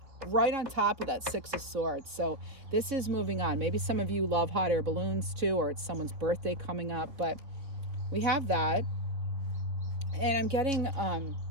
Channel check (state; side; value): late; left; 3.6 ms